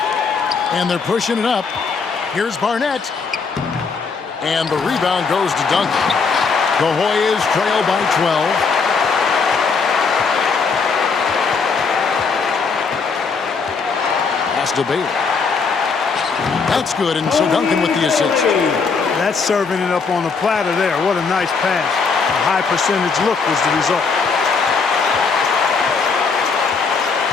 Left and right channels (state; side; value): quieter; right; 5.0 dB